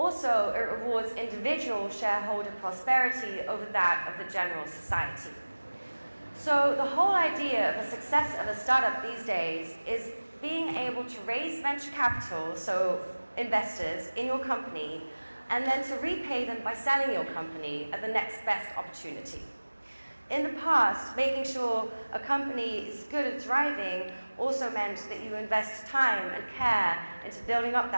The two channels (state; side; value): inverted; both; correlation -1.00